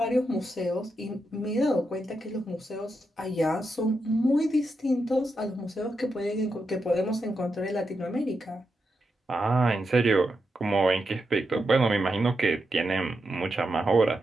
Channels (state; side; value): normal; both; correlation 0.86